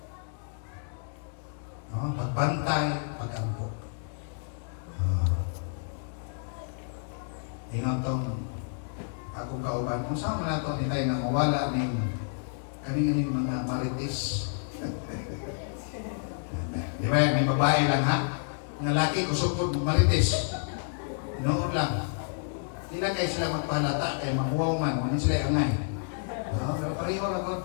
Pagbantay, pagampo. Ingon tong akong kauban. Kung saan mo na ito nitay nga mawala ng kaning mga marites. Di ba? May babae lang ha? Ng laki kusupod marites. Noon lang. Di na kayo sila magpahalata kay mahuwaw man. Ano sila angay? Pero pareho ragot.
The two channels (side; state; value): right; silent; digital silence